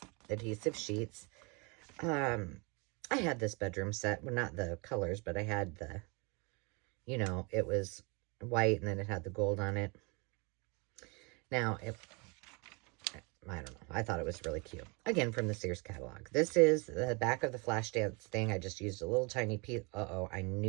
adhesive sheets. I had this bedroom set, well, not the colors, but I had the, you know, it was white, and then it had the gold on it. Now, I don't know. I thought it was really cute. Again, from the Sears catalog. This is the back of the Flashdance thing. I just used a little tiny piece. Uh-oh, I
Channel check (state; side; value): quieter; left; 30.1 dB